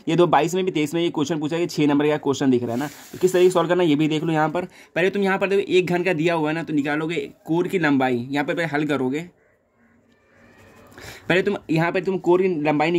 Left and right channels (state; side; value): identical; both; correlation 1.00